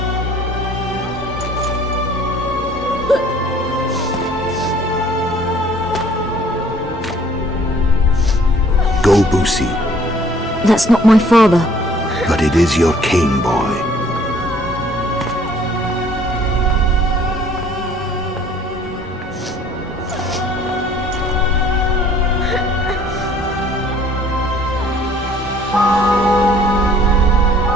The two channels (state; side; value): normal; both; correlation 0.56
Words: Go, Boosie. That's not my father. But it is your king, boy.